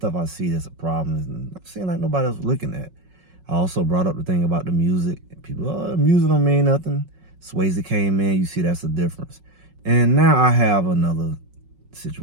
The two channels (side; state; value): left; late; 5.4 ms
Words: I see that's a problem and I'm seeing like nobody else looking at. I also brought up the thing about the music. People, music don't mean nothing. Swayze came in, you see that's the difference. And now I have another